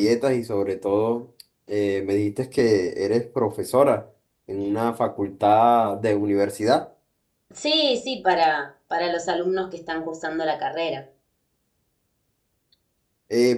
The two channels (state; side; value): identical; both; correlation 1.00